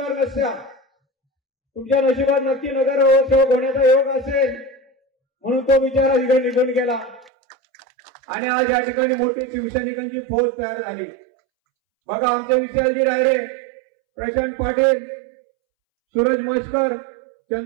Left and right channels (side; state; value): left; drops out; at 7.3 s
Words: नसत्या. तुमच्या नशिबात नक्की नगरसेवक होण्याचा योग असेल म्हणून तो बिचारा तिकडे निघून गेला आणि आज या ठिकाणी मोठी शिवसैनिकांची फौज तयार झाली. बघा आमचे विशालजी रायरे, प्रशांत पाटील, सूरज मस्कर,